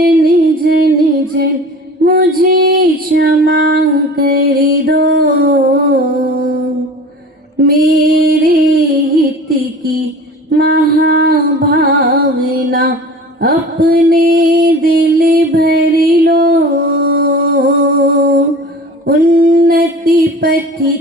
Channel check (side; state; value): both; normal; correlation 0.40